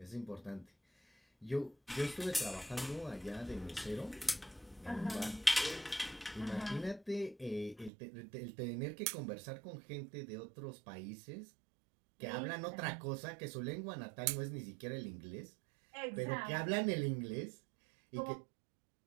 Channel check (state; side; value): drops out; left; at 7.9 s